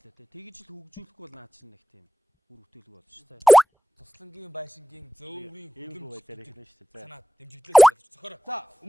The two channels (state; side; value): normal; both; correlation 0.97